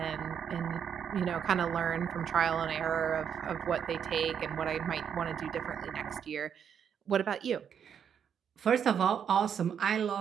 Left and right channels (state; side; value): quieter; left; 8.0 dB